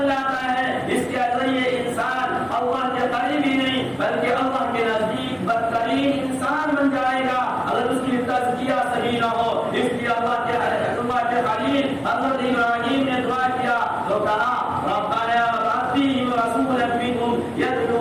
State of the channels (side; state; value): both; identical; correlation 1.00